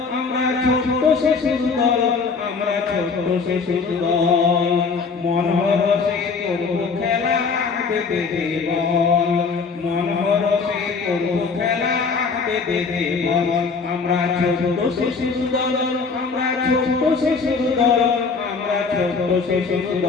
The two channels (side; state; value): right; quieter; 4.9 dB